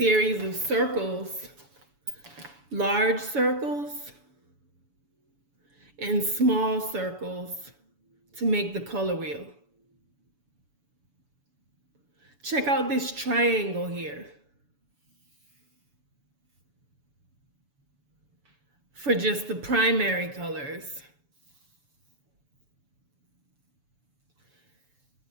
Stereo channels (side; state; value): left; late; 7.0 ms